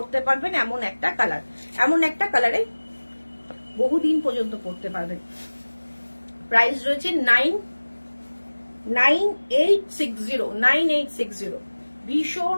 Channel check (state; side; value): inverted; both; correlation -1.00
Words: পারবেন, এমন একটা কালার, এমন একটা কালারে বহুদিন পর্যন্ত পরতে পারবেন। প্রাইস রয়েছে 9860। ভীষণ